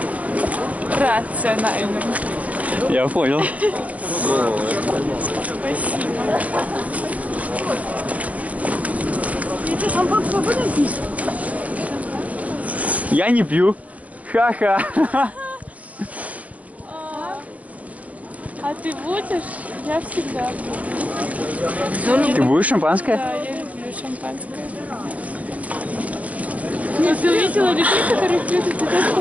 Рационально. Я понял. Спасибо. Я не пью. Ха-ха. А ты будешь? Я всегда буду. Ты будешь шампанское? Да, я люблю шампанское. Нет, ты увидела людей, которые пьют, и ты тоже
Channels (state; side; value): late; left; 0.070 ms